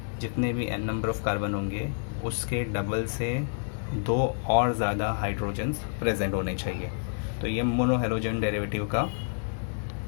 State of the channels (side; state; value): right; silent; digital silence